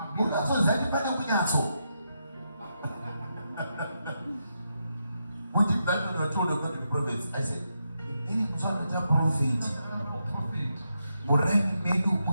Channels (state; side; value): inverted; both; correlation -0.83